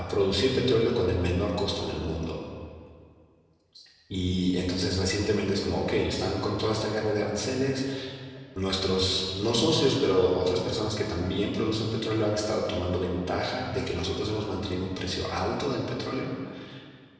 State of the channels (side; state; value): both; identical; correlation 1.00